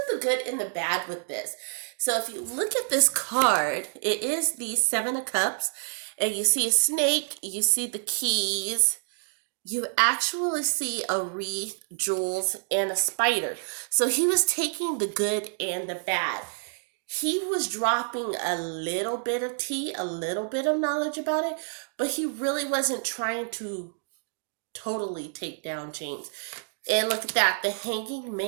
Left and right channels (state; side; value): silent; left; digital silence